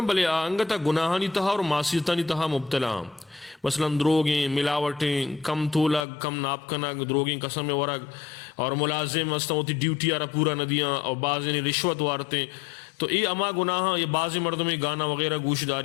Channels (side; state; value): right; drops out; at 6.0 s